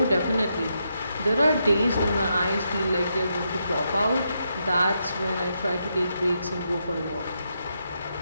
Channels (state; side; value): inverted; both; correlation -0.81